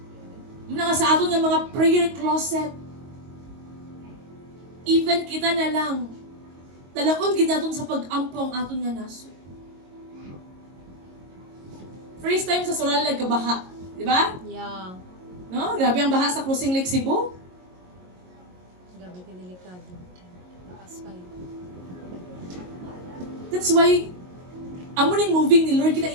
Muna nga sa aton nga mga prayer closet. Even kita na lang. Dalaon ginaton sa pag-ampo ang aton nga naso. First time sa Soral nagkabaha. Di ba? Yeah. No? Grabe ang baha sa Crossing Lake Cebu. Gabi ka delikado. Takas kayo. That's why, amo ning moving ni Lord,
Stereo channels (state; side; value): late; left; 22 ms